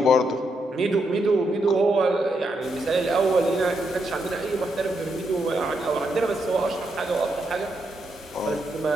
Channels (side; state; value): both; normal; correlation 0.80